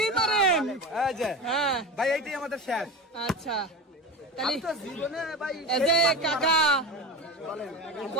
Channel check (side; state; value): both; normal; correlation 0.26